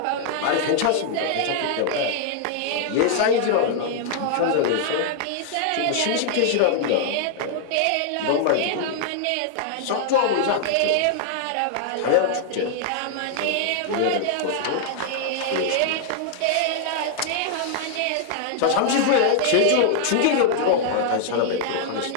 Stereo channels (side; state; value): both; different; correlation -0.01